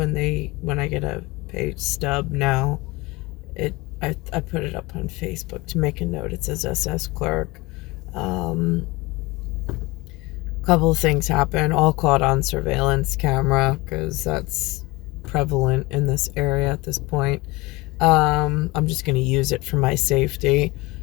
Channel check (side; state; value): right; quieter; 22.9 dB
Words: I get a pay stub now, I put it up on Facebook to make a note. It says SS clerk. Um, Couple of things happen, all caught on surveillance camera because that's prevalent in this area at this point. I'm just going to use it for my safety,